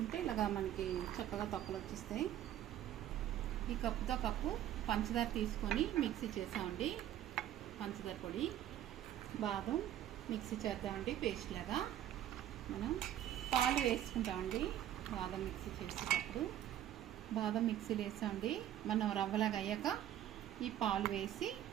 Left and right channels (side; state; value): left; quieter; 11.8 dB